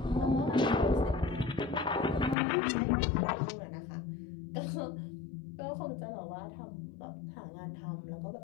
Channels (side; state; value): right; drops out; at 2.4 s